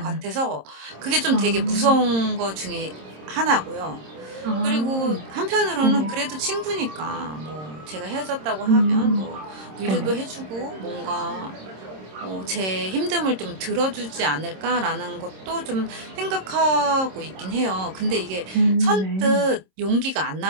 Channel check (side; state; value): left; late; 26 ms